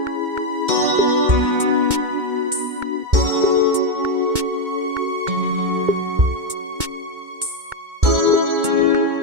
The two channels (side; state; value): left; late; 2.2 ms